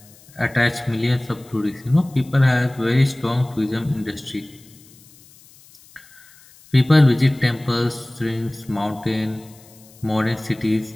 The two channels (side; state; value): left; noise; hiss, 25 dB below the sound